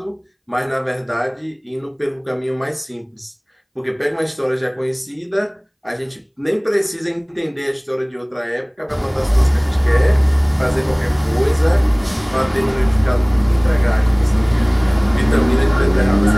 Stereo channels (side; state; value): both; identical; correlation 1.00